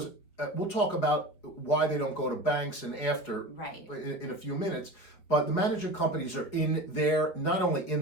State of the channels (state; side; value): late; right; 5.1 ms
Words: we'll talk about why they don't go to banks and after Right. in a few minutes. But the management companies are in there, not only in